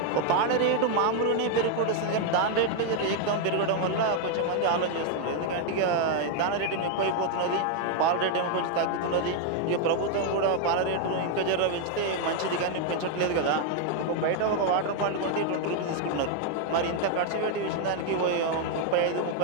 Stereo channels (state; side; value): different; both; correlation 0.00